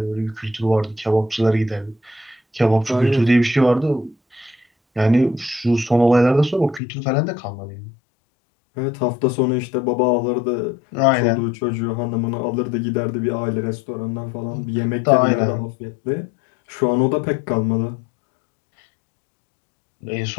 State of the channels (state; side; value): drops out; right; at 6.8 s